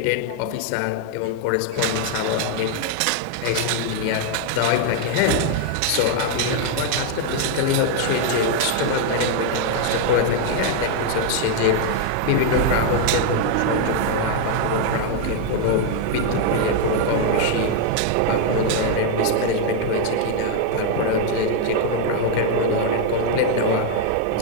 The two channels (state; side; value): different; both; correlation 0.00